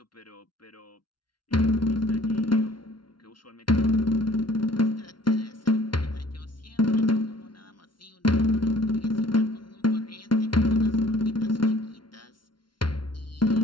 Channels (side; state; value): right; late; 0.72 ms